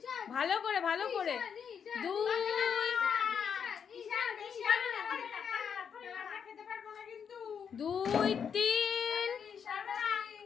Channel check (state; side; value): quieter; right; 7.2 dB